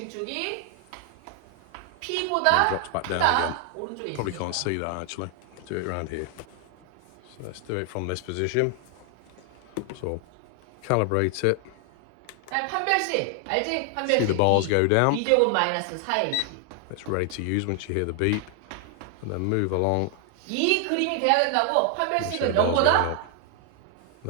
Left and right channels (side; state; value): both; different; correlation 0.00